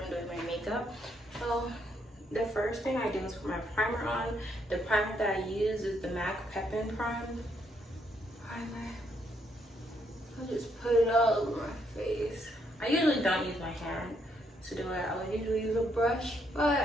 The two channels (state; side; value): normal; both; correlation 0.73